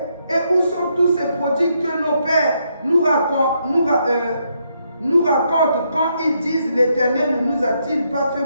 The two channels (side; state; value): both; inverted; correlation -0.77